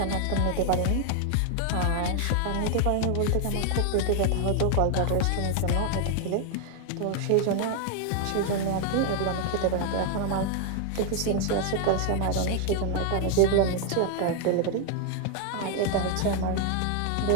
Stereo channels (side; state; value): both; different; correlation 0.00